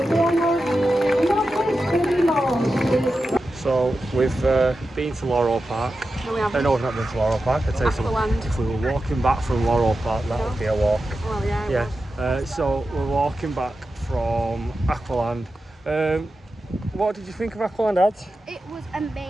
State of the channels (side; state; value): both; normal; correlation 0.91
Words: So we've been to Laurel Park. No, we haven't. No, we've not been to Laurel Park. I'd say something. Aqualand. If we were walking back from Laurel Park, that would be a walk. Well, yeah. Yeah. So we're walking back from Aqualand. What did you think of Aqualand, Ad? It was